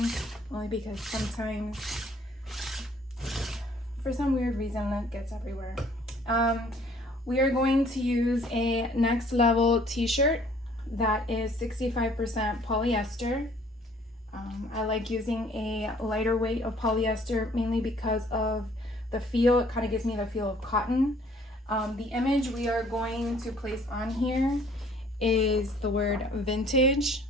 only because sometimes, for some weird reason, lint gets everywhere. We are going to use a next level t-shirt that is 65% polyester. I like using a lighter weight of polyester mainly because of the feel. It kind of gives me the feel of cotton. The image we are going to place on here is the word vintage.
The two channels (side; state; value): both; normal; correlation 0.58